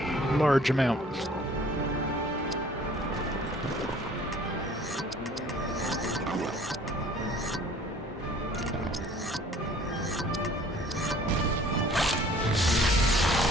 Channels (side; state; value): both; normal; correlation 0.53